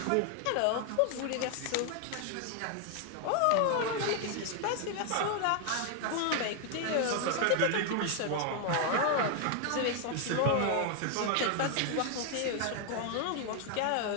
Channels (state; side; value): different; both; correlation 0.00